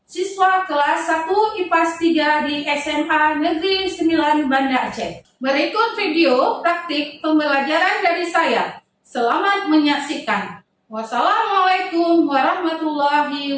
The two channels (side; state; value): both; identical; correlation 1.00